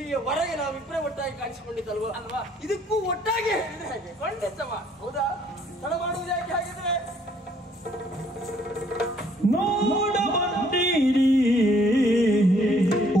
ನಾವಿಬ್ಬರೇ ಒಟ್ಟಾಗಿ ಕಾಣಿಸಿಕೊಂಡಿದ್ದಲ್ವಾ ಅಲ್ವಾ? ಇದಕ್ಕೂ ಒಟ್ಟಾಗಿ ಹೇಳಿದ್ರೆ ಹಾಗೆ ಖಂಡಿತವ. ಹೌದಾ? ತಡ ಮಾಡುವುದು ಯಾಕೆ ಹಾಗಿದ್ರೆ? ನೋಡ ಬಂದಿರಿ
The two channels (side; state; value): both; normal; correlation 0.64